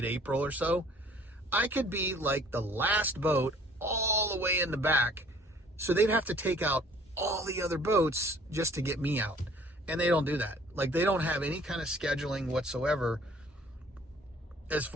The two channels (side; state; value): both; normal; correlation 0.55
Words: or so. I could be like the last boat all the way in the back. So they'd have to take out all the other boats just to get me out. And they don't do that. Like, they don't have any kind of scheduling whatsoever as